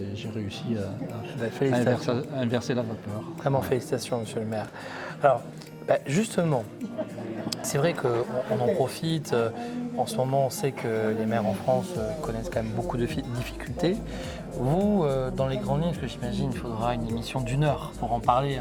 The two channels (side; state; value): both; identical; correlation 1.00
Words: j'ai réussi à inverser la vapeur. Vraiment félicitations, monsieur le maire. Alors, justement, c'est vrai qu'on en profite. En ce moment, on sait que les maires en France connaissent quand même beaucoup de difficultés. Vous, dans les grandes lignes, parce que j'imagine qu'il faudra une émission d'1 heure pour en parler,